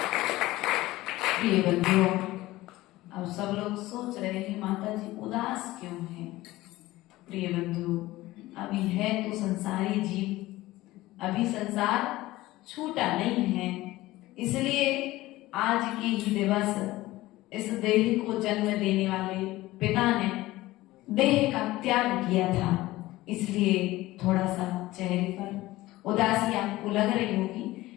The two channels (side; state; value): right; quieter; 17.8 dB